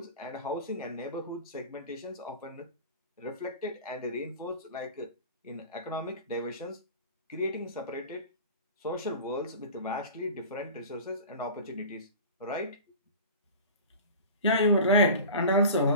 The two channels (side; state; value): both; inverted; correlation -0.37